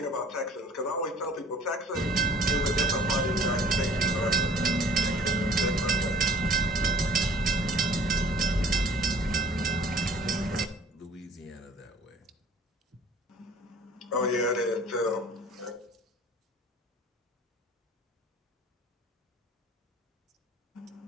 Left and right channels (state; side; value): normal; both; correlation 0.52